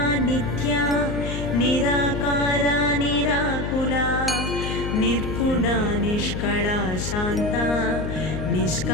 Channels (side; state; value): left; noise; hum, 4 dB below the sound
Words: नित्या निराकारा निराकुला निर्गुणा निष्कळा शान्ता